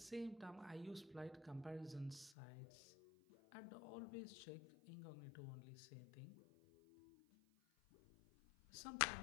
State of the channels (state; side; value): drops out; right; at 2.4 s